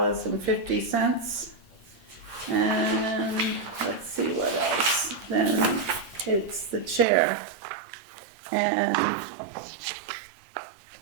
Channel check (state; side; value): drops out; left; at 7.1 s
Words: And let's see what else. Then it's the chair. And